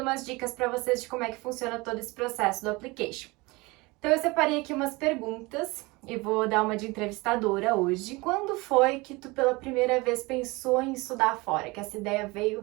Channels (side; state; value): left; quieter; 24.1 dB